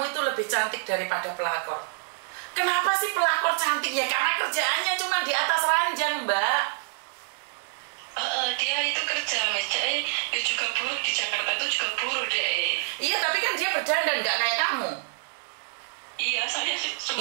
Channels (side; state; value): left; silent; digital silence